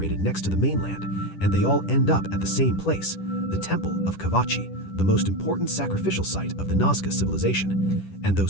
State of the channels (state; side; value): late; right; 10 ms